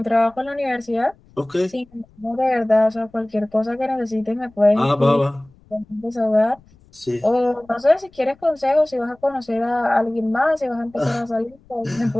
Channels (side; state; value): left; noise; rumble, 29 dB below the sound